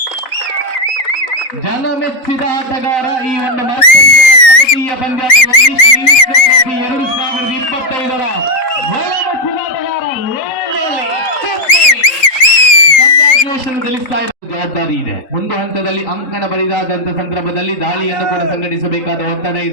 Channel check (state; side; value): late; right; 3.7 ms